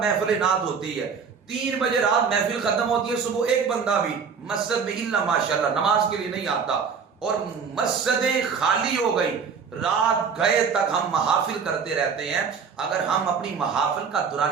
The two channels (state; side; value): quieter; left; 6.0 dB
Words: نعت ہوتی ہے، 3 بجے رات محفل ختم ہوتی ہے، صبح ایک بندہ بھی مسجد میں الا ماشاءاللہ نماز کے لیے نہیں آتا، اور مسجدیں خالی ہو گئی، رات گئے تک ہم محافل کرتے رہتے ہیں. اگر ہم اپنی محافل کا